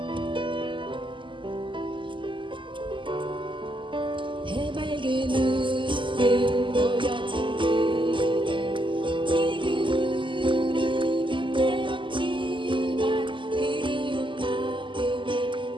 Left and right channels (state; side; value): late; left; 0.24 ms